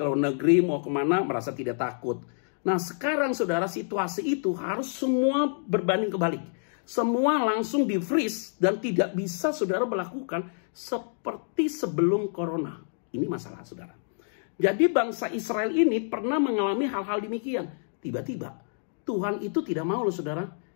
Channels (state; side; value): silent; right; digital silence